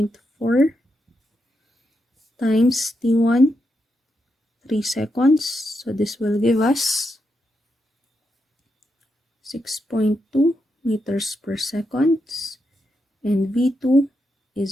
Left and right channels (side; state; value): both; normal; correlation 0.84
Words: times T1, 3 seconds. So this will give us 6.2 meters per second. And V2